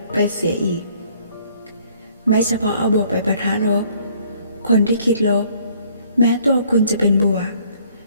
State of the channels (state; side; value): inverted; both; correlation -0.61